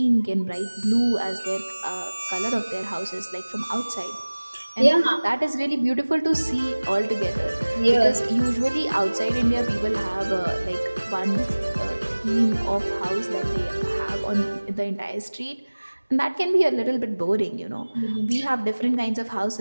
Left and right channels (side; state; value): both; inverted; correlation -1.00